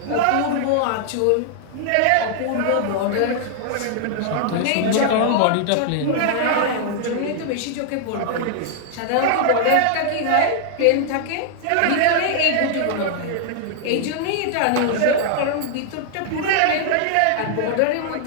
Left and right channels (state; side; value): different; both; correlation -0.01